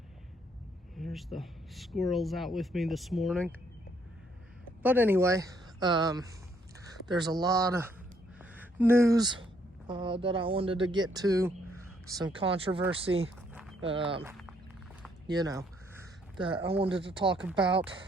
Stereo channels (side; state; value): both; normal; correlation 0.69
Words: There's the squirrels out with me this morning. But anyway, there's a lot of news that I wanted to get to, some controversy, that I wanted to talk about.